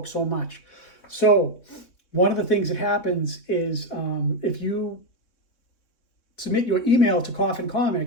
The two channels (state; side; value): late; right; 3.8 ms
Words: so much. So one of the things that happens is if you submit your email to Coffin